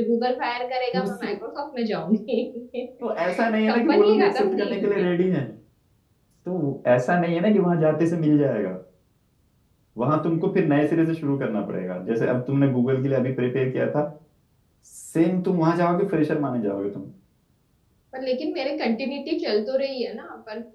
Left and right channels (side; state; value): both; identical; correlation 1.00